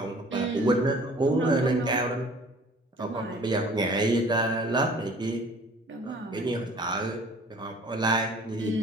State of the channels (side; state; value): both; normal; correlation 0.50